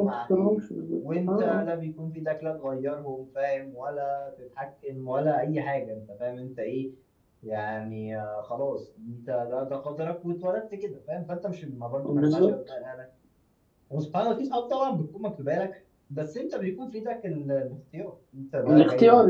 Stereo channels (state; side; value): identical; both; correlation 1.00